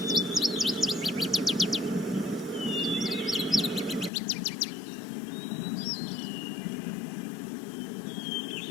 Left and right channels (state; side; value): drops out; right; at 4.1 s